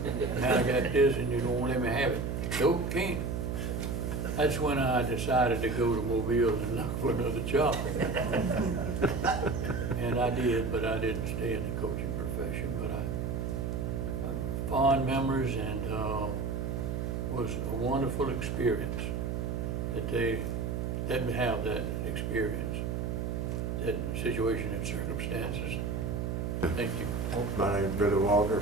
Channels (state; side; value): noise; right; hum, 1 dB below the sound